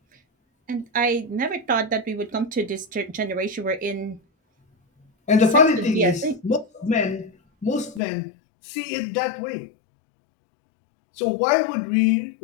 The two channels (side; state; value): right; drops out; at 8.0 s